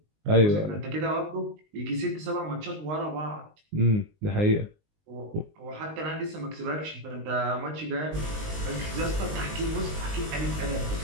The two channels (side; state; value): left; late; 19 ms